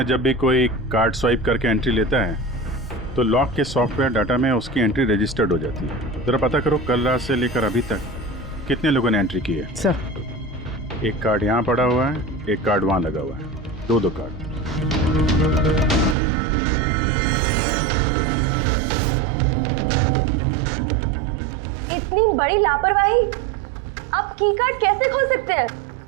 जब भी कोई कार्ड स्वाइप करके एंट्री लेता है तो लॉक के सॉफ्टवेयर डाटा में उसकी एंट्री रजिस्टर्ड हो जाती है। जरा पता करो कल रात से लेकर अभी तक कितने लोगों ने एंट्री की है। सर, एक कार्ड यहाँ पड़ा हुआ है, एक कार्ड वहाँ लगा हुआ है, दो कार्ड। इतनी बड़ी लापरवाही! आप की कार्ड कैसे खो सकते हैं?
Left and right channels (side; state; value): left; drops out; at 16.2 s